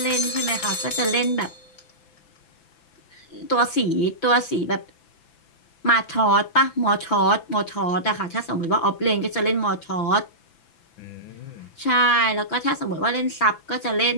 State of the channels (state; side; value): late; right; 6.0 ms